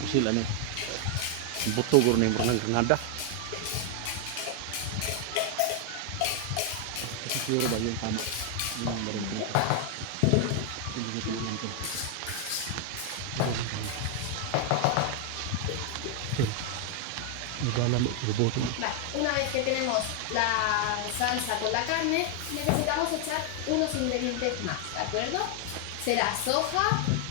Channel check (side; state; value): both; different; correlation 0.00